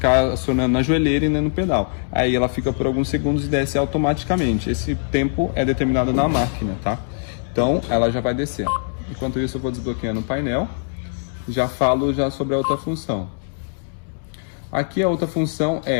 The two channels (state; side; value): silent; right; digital silence